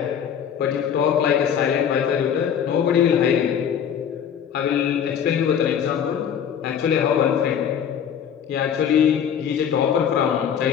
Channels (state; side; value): quieter; right; 8.4 dB